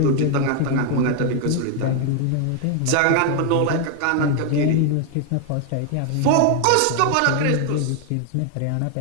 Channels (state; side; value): different; both; correlation 0.01